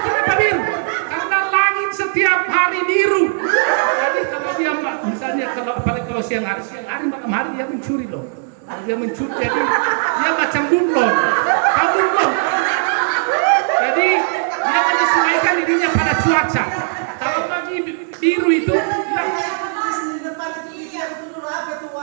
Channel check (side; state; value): left; silent; digital silence